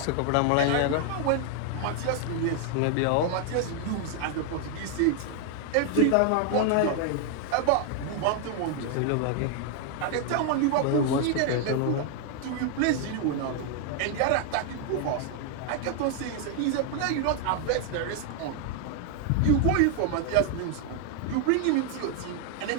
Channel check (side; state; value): both; different; correlation 0.00